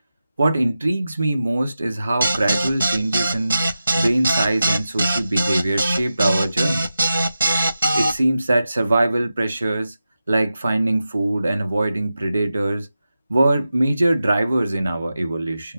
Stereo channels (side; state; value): both; inverted; correlation -0.92